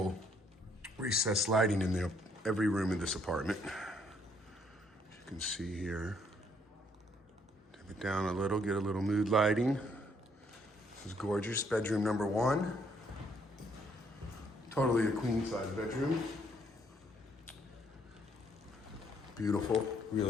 recessed lighting in every room in this apartment. As you can see here. Dim it down a little, get a little mood lighting. This is gorgeous, bedroom number 1. Totally a queen size bedroom. Beautiful,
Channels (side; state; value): both; normal; correlation 0.68